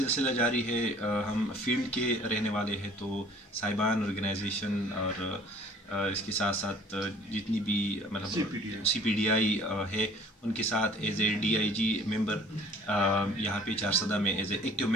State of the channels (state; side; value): normal; both; correlation 0.51